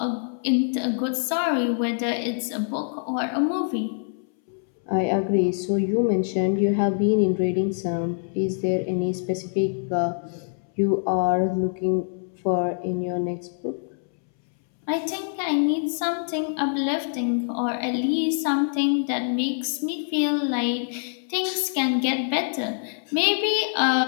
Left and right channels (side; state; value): right; silent; 62 dB below the other